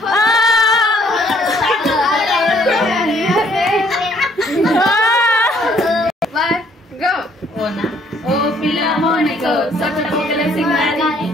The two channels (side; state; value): both; normal; correlation 0.64